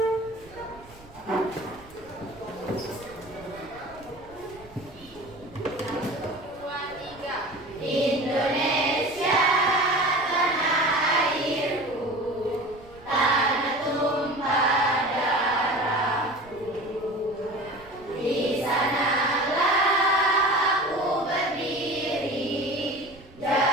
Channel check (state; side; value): noise; right; rumble, 23 dB below the sound